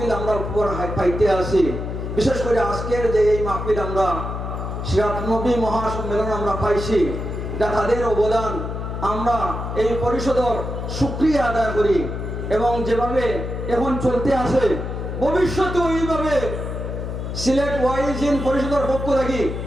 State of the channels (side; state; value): left; noise; hum, 5 dB below the sound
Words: আমরা উপহার পাইতে আসি। বিশেষ করে আজকের যে এই মাহফিল আমরা সিরাতুন নবী মহাসম্মেলন আমরা পাইছি, এটা তাদের অবদান। আমরা এই পরিষদের শুকরিয়া আদায় করি এবং যেভাবে এখন চলতে আসে ভবিষ্যতে এইভাবে সিলেট ওয়াইজিন পরিষদের পক্ষ থেকে